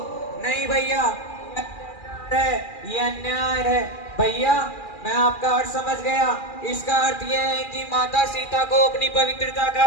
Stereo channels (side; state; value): right; late; 2.4 ms